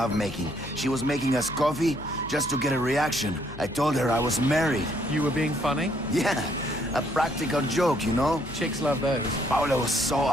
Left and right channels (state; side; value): noise; left; hum, 16 dB below the sound